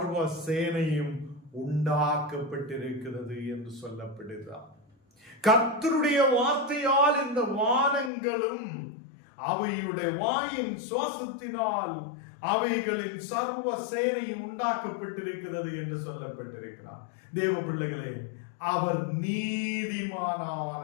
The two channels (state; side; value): drops out; right; at 8.1 s